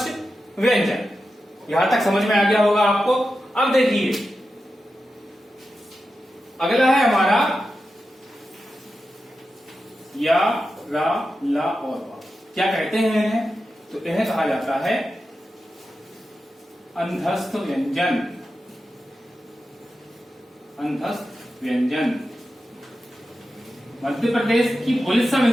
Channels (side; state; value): both; normal; correlation 0.91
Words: व्यंजन। यहां तक समझ में आ गया होगा आपको। अब देखिए, अगला है हमारा या, रा, ला और वा। क्या कहते हैं इन्हें? तो इन्हें कहा जाता है अंधस्थ व्यंजन। अंधस्थ व्यंजन। मध्य प्रदेश की पुलिस सब